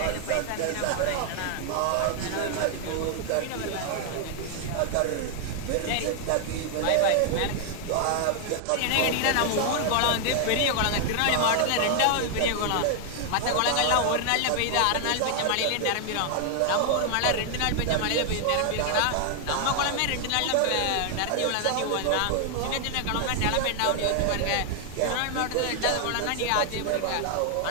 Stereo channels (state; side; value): different; both; correlation 0.00